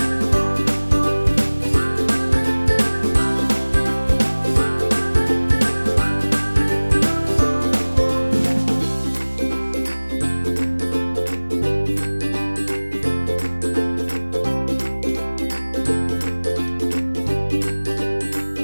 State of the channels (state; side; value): inverted; both; correlation -1.00